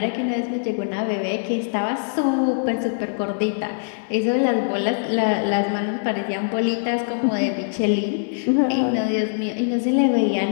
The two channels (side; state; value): right; silent; 64 dB below the other